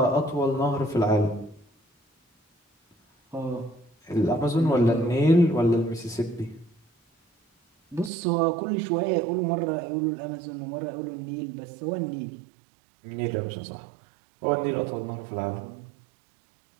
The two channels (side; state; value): left; drops out; at 8.1 s